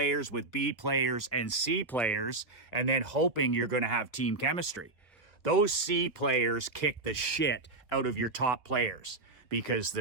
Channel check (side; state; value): left; quieter; 3.2 dB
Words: with B players and C players, and then hoping you're going to have team chemistry. Those C players kick the shit out of your top players because